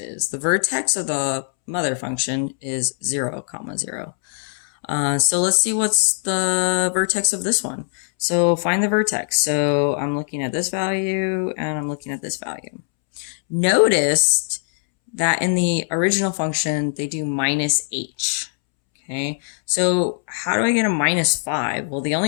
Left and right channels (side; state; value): right; silent; 65 dB below the other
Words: The vertex of the mother function is 0, comma 0. So let's see what's the vertex of this one. So find the vertex. So I'm looking at this value and I'm looking at this value. Notice that in the original function, they do minus h. Okay, so how do I get a minus 5? Well, the